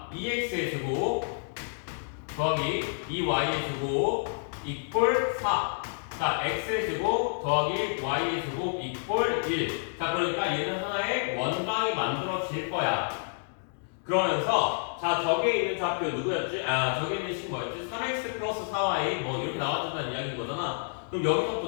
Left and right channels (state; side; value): silent; right; digital silence